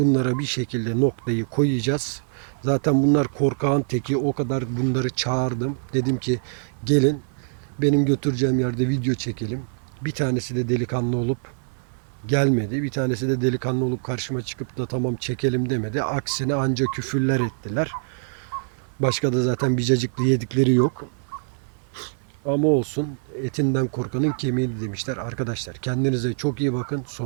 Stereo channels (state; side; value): silent; left; 59 dB below the other